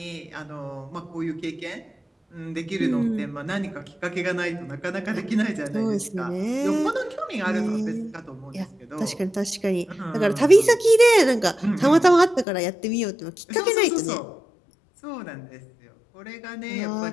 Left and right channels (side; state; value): right; drops out; at 12.5 s